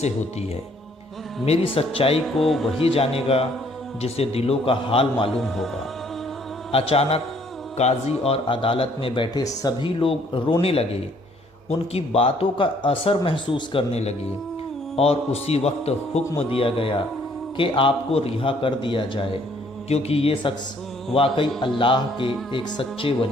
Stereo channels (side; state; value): both; normal; correlation 0.63